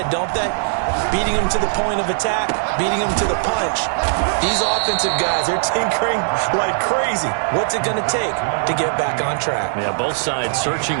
don't they? Beating them to the point of attack, beating them to the punch. These offensive guys, they're tinkering like crazy. What's it going to take to get back on track? Yeah, both sides searching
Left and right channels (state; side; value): silent; left; digital silence